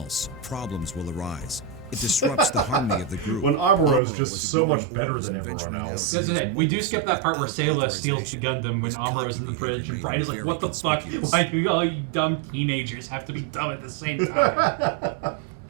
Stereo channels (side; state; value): left; drops out; at 4.0 s